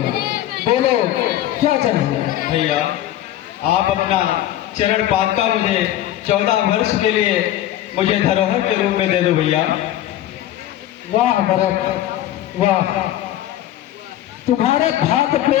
बोलो क्या चाहिए? भैया, आप अपना चरण पादुका मुझे 14 वर्ष के लिए मुझे धरोहर के रूप में दे दो भैया। वाह भरत वाह, तुम्हारे भात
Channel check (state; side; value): quieter; right; 13.1 dB